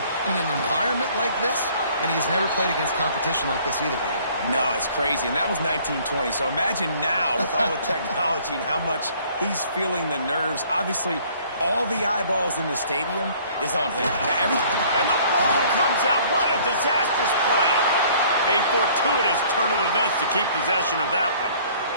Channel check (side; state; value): both; inverted; correlation -0.56